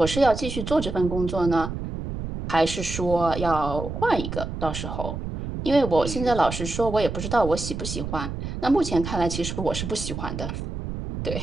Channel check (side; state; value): right; noise; rumble, 6 dB below the sound